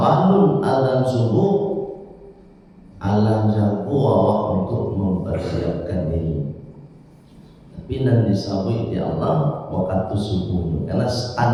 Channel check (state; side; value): identical; both; correlation 1.00